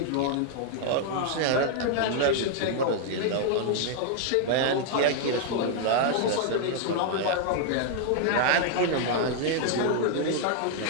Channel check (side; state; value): both; different; correlation 0.00